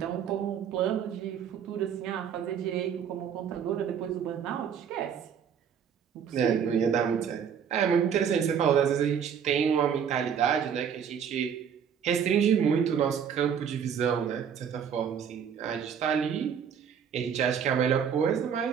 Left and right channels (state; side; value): quieter; left; 7.8 dB